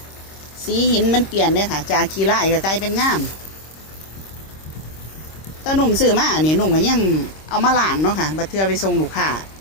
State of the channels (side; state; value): right; late; 26 ms